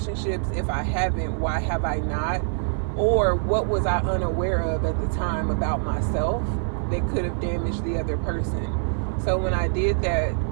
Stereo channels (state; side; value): silent; left; 56 dB below the other